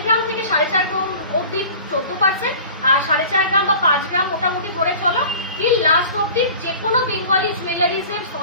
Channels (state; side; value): inverted; both; correlation -0.42